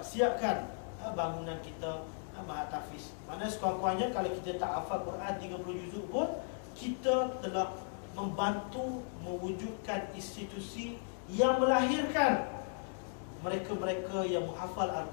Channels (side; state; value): right; silent; digital silence